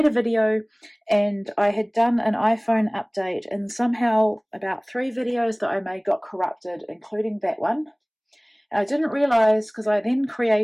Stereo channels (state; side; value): identical; both; correlation 1.00